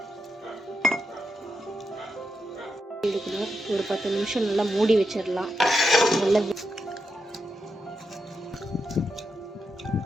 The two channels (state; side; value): normal; both; correlation 0.85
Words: ஒரு 10 நிமிஷம் நல்லா மூடி வச்சிடலாம். நல்லா